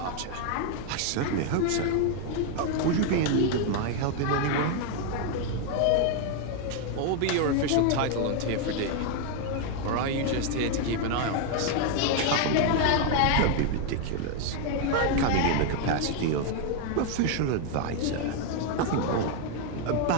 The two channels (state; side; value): different; both; correlation 0.00